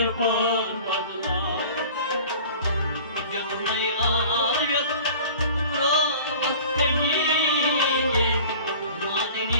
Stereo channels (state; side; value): inverted; both; correlation -0.43